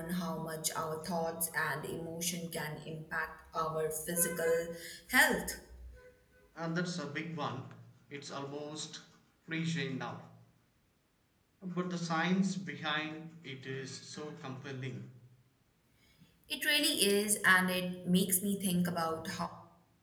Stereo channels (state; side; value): identical; both; correlation 1.00